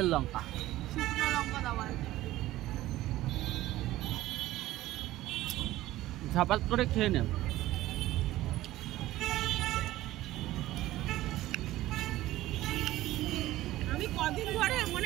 লঙ্কা? শুকনো লঙ্কা দেওয়া। ঝাপাত করে খেয়ে নেন। আমি কদিন ধরে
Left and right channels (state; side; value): quieter; left; 15.9 dB